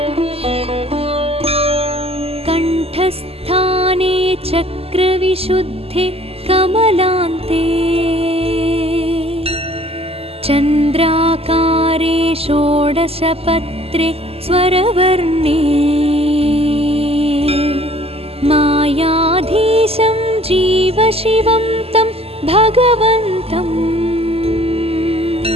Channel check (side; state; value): left; late; 0.29 ms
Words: कंठस्थाने चक्रविशुद्धे कमलान्ते चन्द्राकारे षोडशपत्रे स्वरवर्णे मायाधीशं जीवशिवं तं भगवन्तं